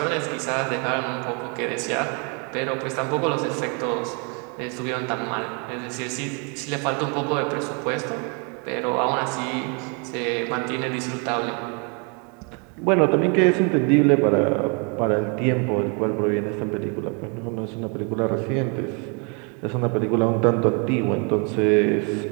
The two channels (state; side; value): quieter; left; 35.6 dB